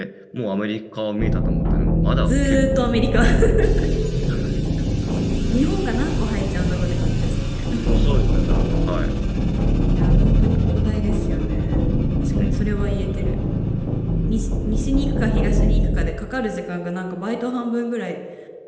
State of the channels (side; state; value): both; identical; correlation 1.00